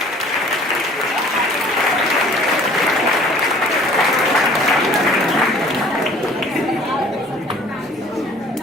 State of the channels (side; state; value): both; normal; correlation 0.51